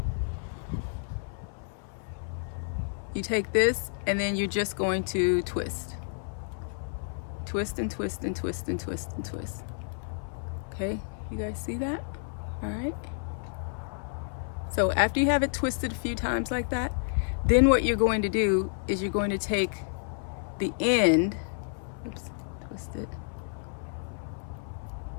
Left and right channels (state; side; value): silent; right; 58 dB below the other